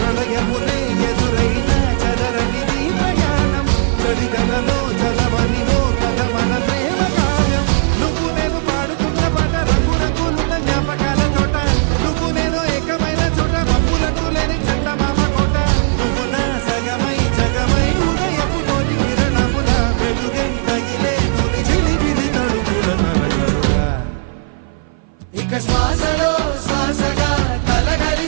ఎదురైన చదరనిది ప్రయాణం చరితలలో చదవని ఓ కథ మన ప్రేమ కావ్యం నువ్వు నేను పాడుతున్న పాట రంగు రంగులున్న జ్ఞాపకాల తోట నువ్వు నేను ఏకమైన చోట మబ్బులట్టు లేని చందమామ కోట నువ్వు నా సగమై జగమై ఉదయపు తోటి కిరణముల వెలుగై తగిలే నులి చిలిపిలి తడుపుల తరగడుగా ఇక శ్వాసలో శ్వాసగా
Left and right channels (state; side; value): silent; left; 57 dB below the other